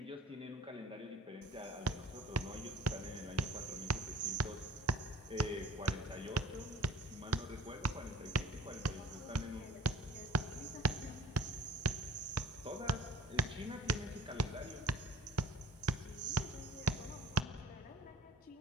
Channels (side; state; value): both; normal; correlation 0.50